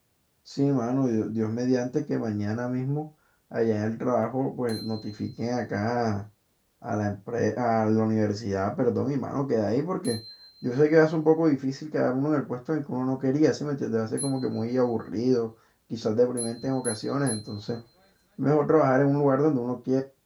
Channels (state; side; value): identical; both; correlation 1.00